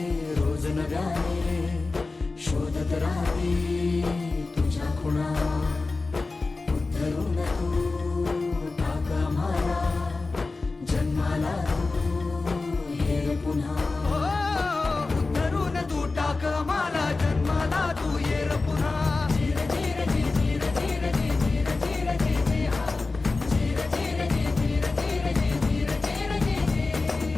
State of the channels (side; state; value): right; quieter; 3.7 dB